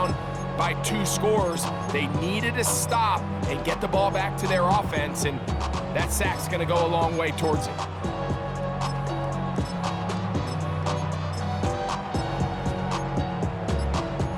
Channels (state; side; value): identical; both; correlation 1.00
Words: by 2 scores. They needed to stop and get the ball back to their offense, and that sack's going to go a long way towards it.